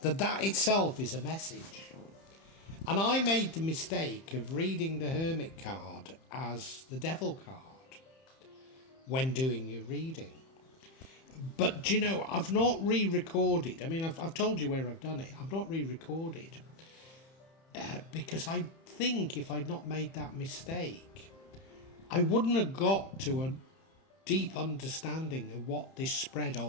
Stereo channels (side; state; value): right; late; 31 ms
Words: that itself is a message. And I made the mistake of reading the Hermit card as the Devil card when doing your reading. But, do you know, I've not re-recorded. I mean, I've told you where I've done it. I've not re-recorded because I think if I'd not made that mistake, I wouldn't have got to a deep understanding of what this spread